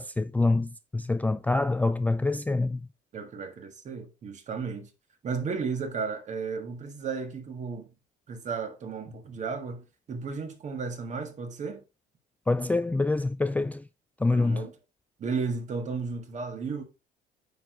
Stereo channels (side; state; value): both; normal; correlation 0.81